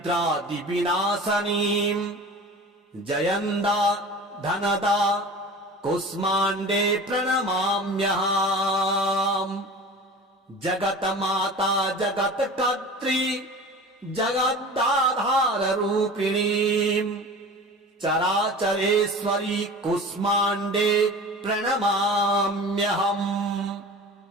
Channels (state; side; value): normal; both; correlation 0.37